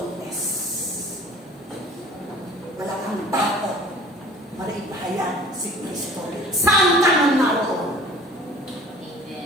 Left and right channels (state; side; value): normal; both; correlation 0.47